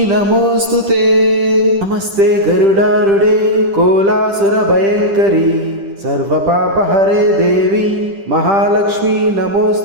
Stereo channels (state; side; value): late; left; 10 ms